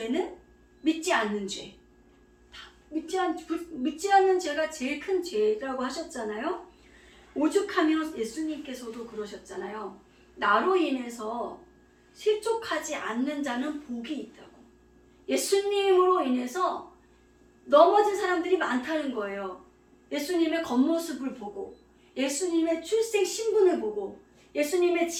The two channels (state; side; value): identical; both; correlation 1.00